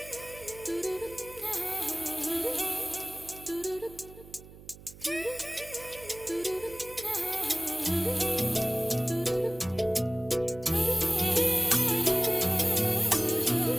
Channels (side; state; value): right; noise; hum, 19 dB below the sound